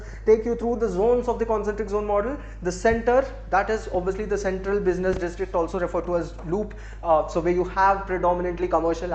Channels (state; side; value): identical; both; correlation 1.00